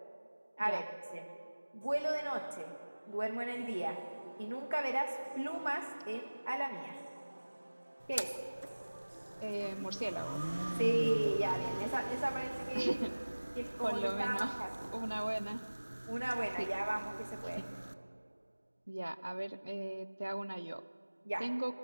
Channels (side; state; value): both; inverted; correlation -1.00